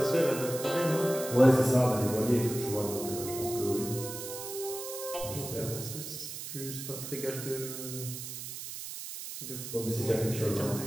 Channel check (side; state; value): right; noise; hiss, 8 dB below the sound